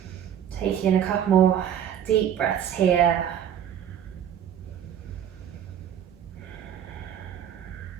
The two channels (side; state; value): left; quieter; 9.4 dB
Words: Taking in a couple more deep breaths here.